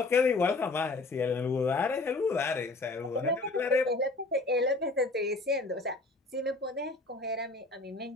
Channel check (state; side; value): quieter; right; 3.2 dB